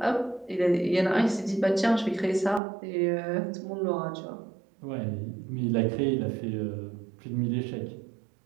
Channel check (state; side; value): drops out; left; at 2.6 s